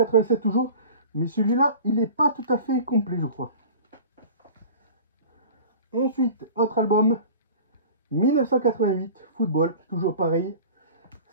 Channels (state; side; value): inverted; both; correlation -0.39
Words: toujours. Mais celui-là, il n'est pas tout à fait complet, je crois. Ensuite, autre album. 1988, football, toujours pareil.